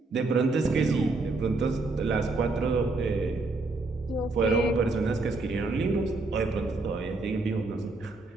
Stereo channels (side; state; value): left; quieter; 3.4 dB